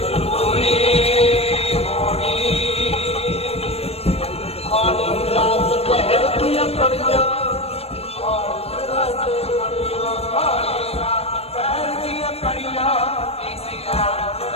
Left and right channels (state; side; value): late; right; 0.29 ms